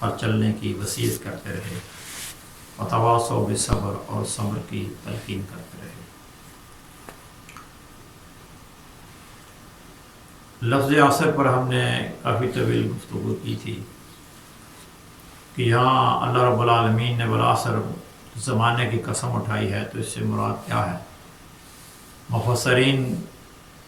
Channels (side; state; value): both; identical; correlation 1.00